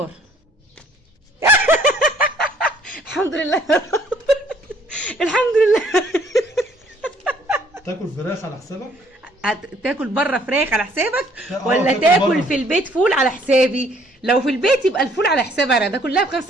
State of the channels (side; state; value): both; normal; correlation 0.62